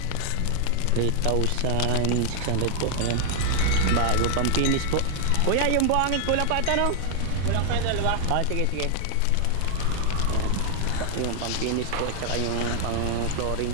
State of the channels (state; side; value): different; both; correlation 0.00